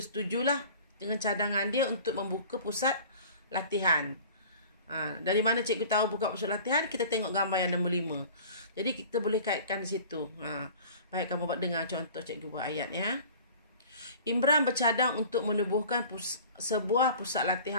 dengan cadangan dia untuk membuka pusat latihan. Dari mana cikgu tahu buka pusat latihan? Kita tengok gambar yang nombor 5. Jadi kita boleh kaitkan di situ. Baik, kamu buat dengar contoh cikgu buat ayat ya. Imran bercadang untuk menubuhkan sebuah pusat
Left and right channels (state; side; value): inverted; both; correlation -0.44